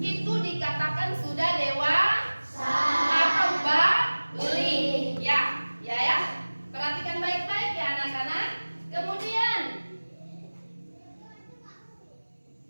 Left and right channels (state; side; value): inverted; both; correlation -1.00